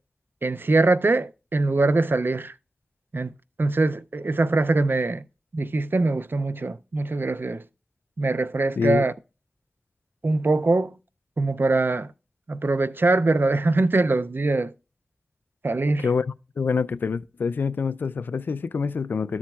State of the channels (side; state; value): both; normal; correlation 0.90